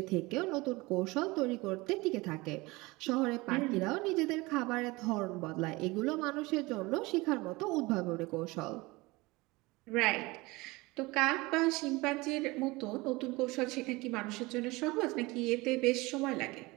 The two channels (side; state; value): left; quieter; 22.6 dB